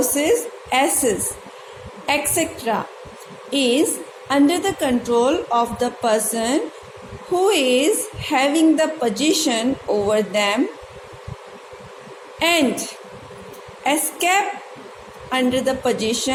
asses, etc. is under the control of the person who is having the possession over them and escape under the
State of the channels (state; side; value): identical; both; correlation 1.00